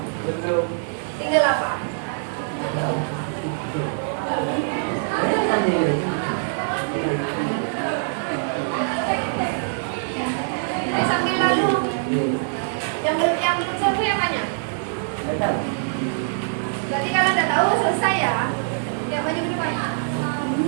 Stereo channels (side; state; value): left; silent; digital silence